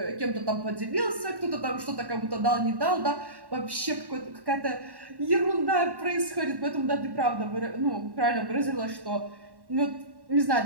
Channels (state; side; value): late; left; 1.1 ms